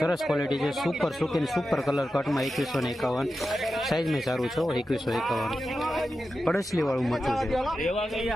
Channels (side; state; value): both; normal; correlation 0.91